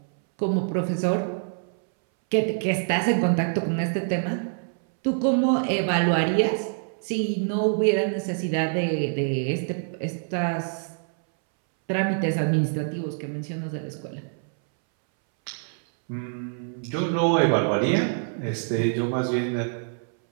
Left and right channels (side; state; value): left; silent; 61 dB below the other